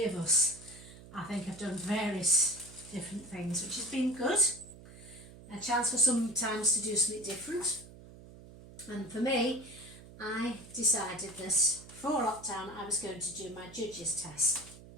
of us, I think, have done various different things, which has been good. A chance for sometimes to do something different. And for me, I decided that before lockdown I was going to do my judges test.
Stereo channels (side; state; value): right; noise; hum, 18 dB below the sound